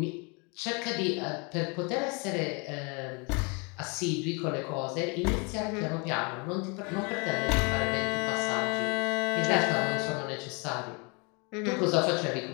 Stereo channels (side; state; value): right; quieter; 31.8 dB